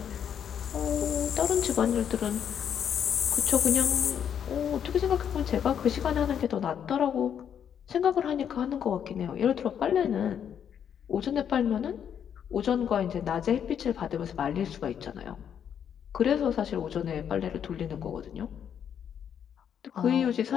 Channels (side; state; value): right; quieter; 8.5 dB